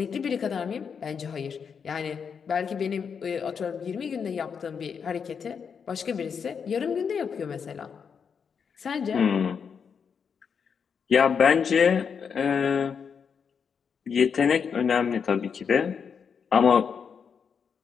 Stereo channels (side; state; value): right; quieter; 6.5 dB